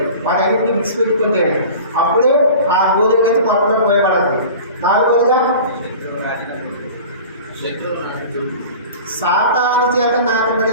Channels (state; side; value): inverted; both; correlation -0.39